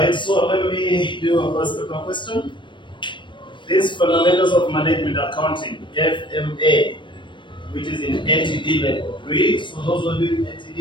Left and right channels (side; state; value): right; late; 0.23 ms